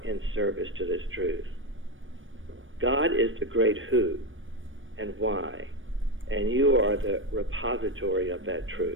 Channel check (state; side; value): late; left; 0.57 ms